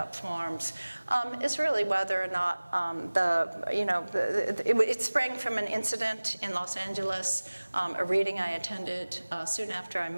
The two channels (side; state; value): both; inverted; correlation -1.00